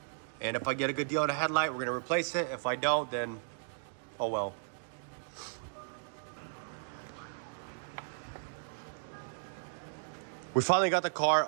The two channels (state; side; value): silent; left; digital silence